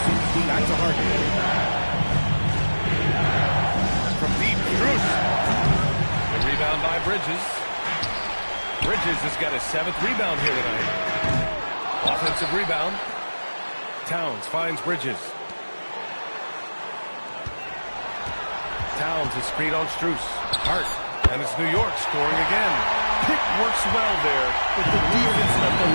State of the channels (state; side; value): inverted; both; correlation -1.00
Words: Back to Harden. From deep, Strus. The rebound by Bridges. Bridges has got his 7th rebound here tonight. Offensive rebound. Towns finds Bridges. Towns is screen on Strus. Hart. And it's New York scoring again. Pick works well there, but the defense left a